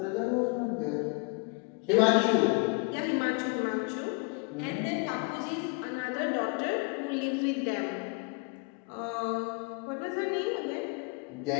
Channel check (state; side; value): quieter; right; 31.5 dB